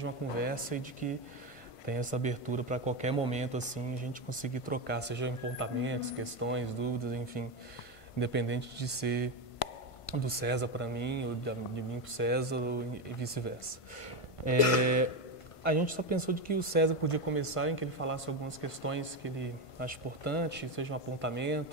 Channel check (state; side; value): late; right; 1.5 ms